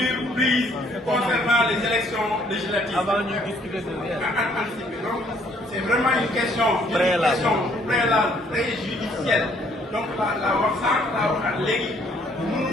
prises concernant les élections législatives. Avant de discuter de anticiper. Donc, c'est vraiment une question préalable, préjudicielle. Donc, la wax sànq, la waxaat léegi.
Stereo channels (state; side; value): normal; both; correlation 0.64